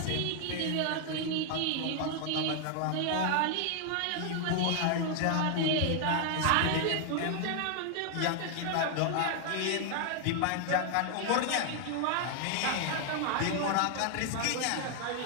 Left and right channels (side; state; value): both; different; correlation 0.00